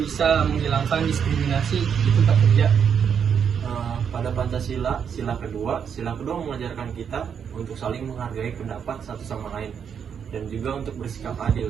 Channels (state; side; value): quieter; left; 7.5 dB